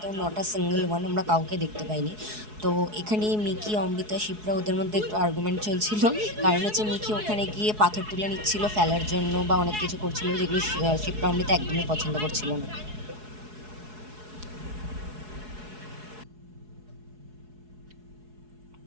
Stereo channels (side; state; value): left; late; 4.7 ms